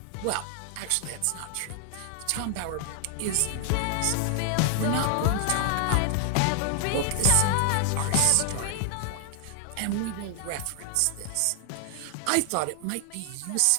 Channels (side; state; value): both; different; correlation 0.00